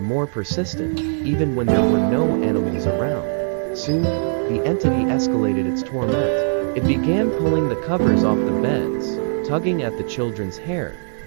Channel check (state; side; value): silent; left; digital silence